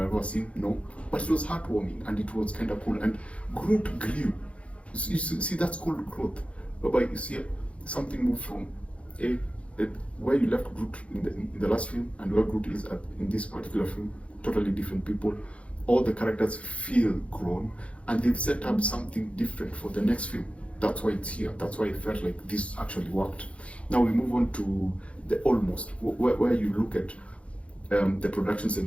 ever seen? No, but it was heartwarming and it was kind of cool. And Groot grew. You see, that's called growth, whereby you see something move from where you left Groot in the last film and where Groot is in this particular film. Totally different people. All the characters feel grown, and they've set up something different for the next film. That's why it's here. That's why I felt like this actually worked. Now we move on to the almost, where you look at the productions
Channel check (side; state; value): right; late; 0.062 ms